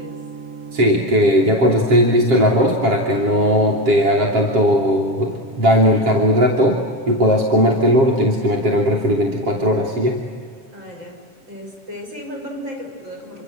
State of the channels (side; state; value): left; late; 7.4 ms